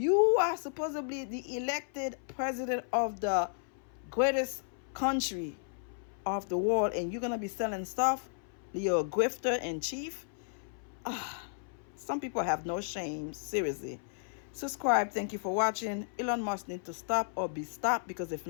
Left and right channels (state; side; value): silent; right; 55 dB below the other